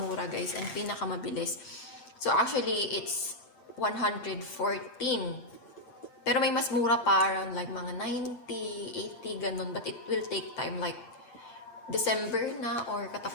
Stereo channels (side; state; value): right; late; 8.8 ms